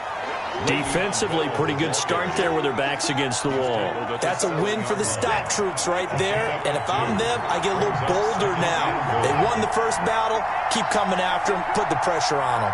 Defensively, pretty good start there with their backs against the wall. That's a win for the stop troops right there. And if I'm them, I get a little bolder now. They won the first battle. Keep coming after them. Put the pressure on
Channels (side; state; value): both; identical; correlation 1.00